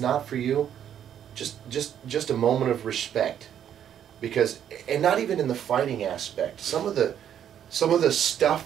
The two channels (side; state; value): left; quieter; 9.6 dB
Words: for you, just a moment of respect, because, and not even in the fighting aspect. Some of the